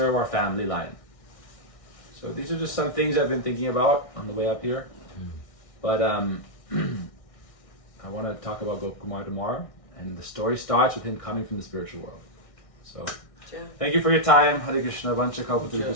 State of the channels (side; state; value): right; late; 1.6 ms